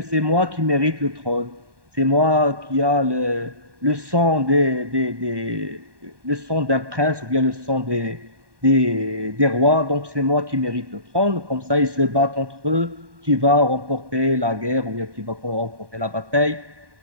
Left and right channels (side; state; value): left; late; 1.2 ms